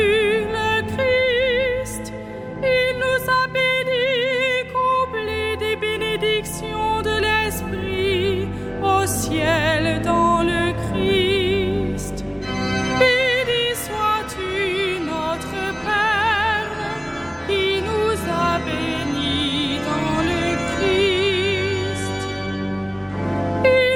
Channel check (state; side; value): identical; both; correlation 1.00